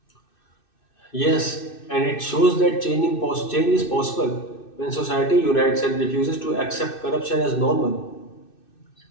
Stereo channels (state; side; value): late; right; 2.6 ms